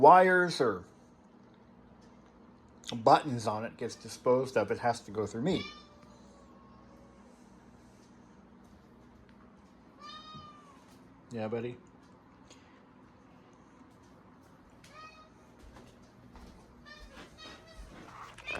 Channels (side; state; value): both; identical; correlation 1.00